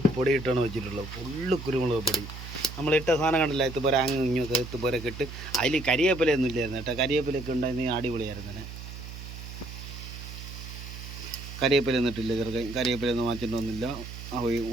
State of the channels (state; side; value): noise; right; hum, 11 dB below the sound